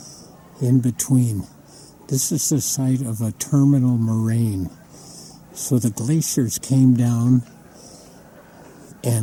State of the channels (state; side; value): identical; both; correlation 1.00